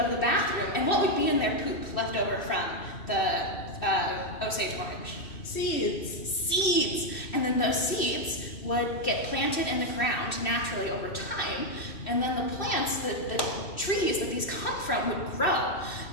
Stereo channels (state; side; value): late; right; 2.6 ms